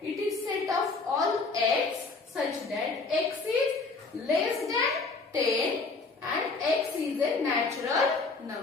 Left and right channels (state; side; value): quieter; right; 4.0 dB